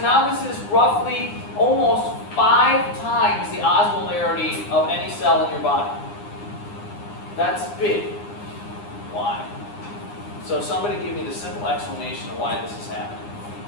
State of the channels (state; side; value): late; right; 9.8 ms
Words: this is roughly almost 5 times the osmolarity of any cell in your body. That's big. Why? So somebody give me the simple explanation of why this is happening.